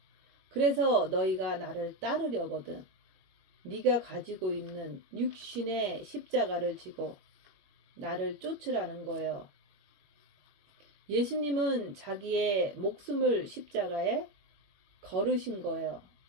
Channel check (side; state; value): left; late; 21 ms